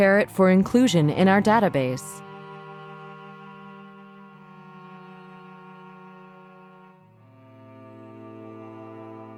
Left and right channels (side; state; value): both; identical; correlation 1.00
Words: it for inclusion in our database.